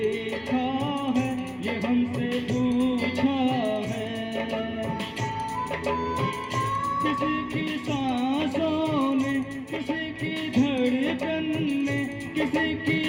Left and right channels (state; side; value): identical; both; correlation 1.00